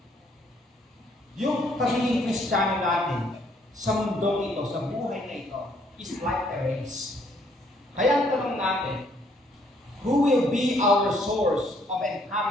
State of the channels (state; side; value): normal; both; correlation 0.67